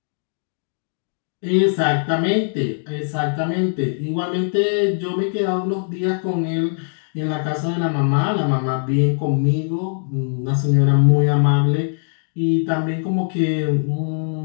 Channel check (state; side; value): silent; right; digital silence